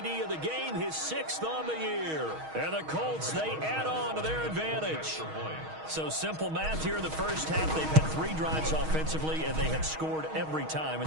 of the game, his 6th on the year. And the Colts, they add on to their advantage. So simple math here in the first half. They've had 3 drives offensively, and they have scored every time,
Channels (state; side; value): late; left; 6.4 ms